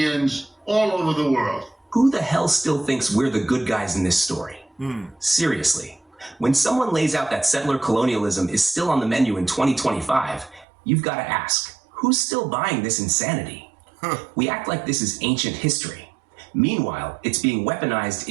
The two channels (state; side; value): drops out; left; at 10.7 s